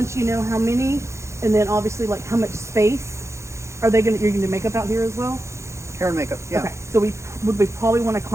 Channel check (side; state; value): left; late; 0.14 ms